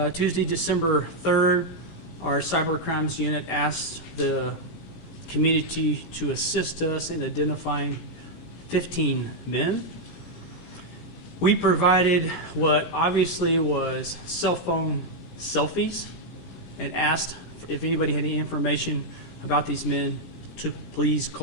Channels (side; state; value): right; late; 17 ms